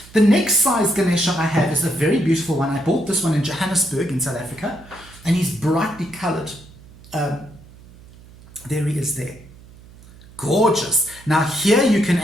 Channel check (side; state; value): right; noise; hum, 22 dB below the sound